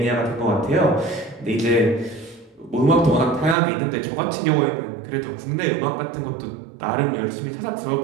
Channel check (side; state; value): left; drops out; at 3.6 s